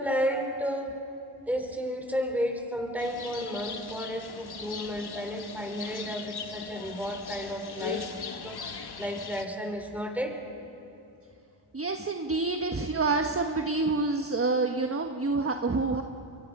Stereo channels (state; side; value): normal; both; correlation 0.28